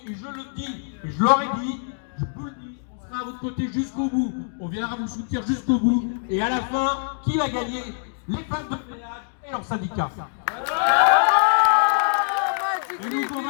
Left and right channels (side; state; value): right; silent; digital silence